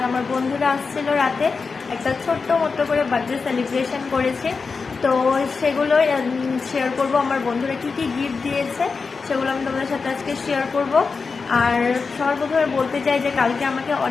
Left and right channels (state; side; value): quieter; right; 4.7 dB